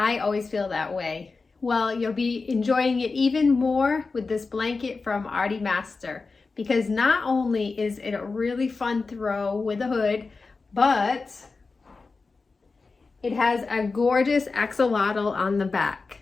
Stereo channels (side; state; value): right; quieter; 4.2 dB